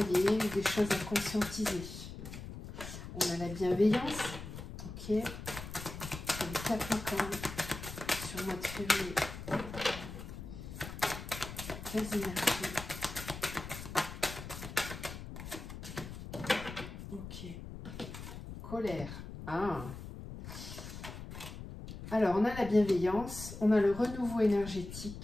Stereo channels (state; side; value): noise; left; rumble, 10 dB below the sound